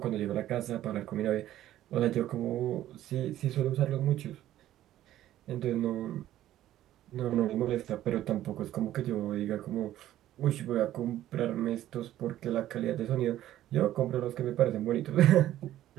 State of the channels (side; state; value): left; quieter; 13.3 dB